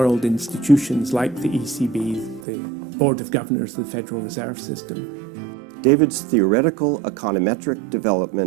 institutions like the ECB, the Board of Governors of the Federal Reserve System. David's theoretical econometric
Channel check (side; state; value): left; drops out; at 2.5 s